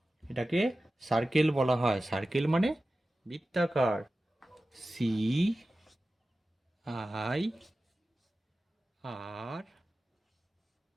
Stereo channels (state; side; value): normal; both; correlation 0.95